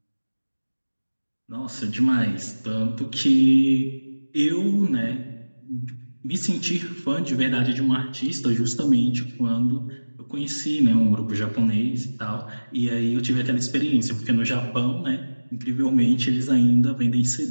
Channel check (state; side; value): inverted; both; correlation -1.00